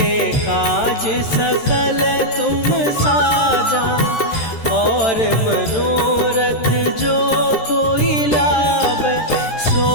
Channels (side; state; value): right; late; 13 ms